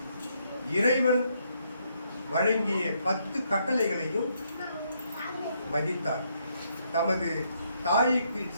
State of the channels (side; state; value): both; inverted; correlation -0.74